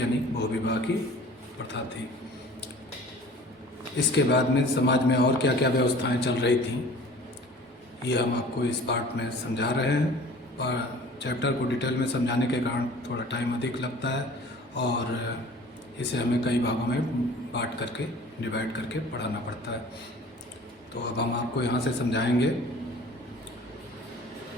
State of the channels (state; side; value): normal; both; correlation 0.46